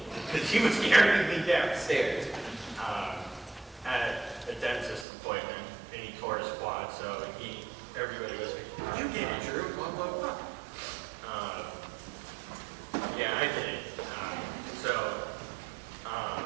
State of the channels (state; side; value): drops out; left; at 5.1 s